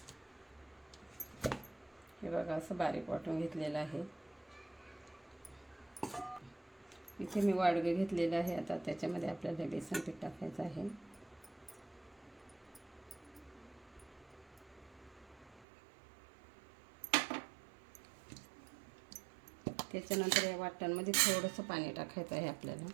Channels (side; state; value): left; drops out; at 15.7 s